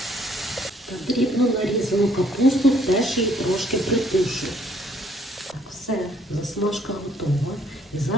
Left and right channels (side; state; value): both; normal; correlation 0.64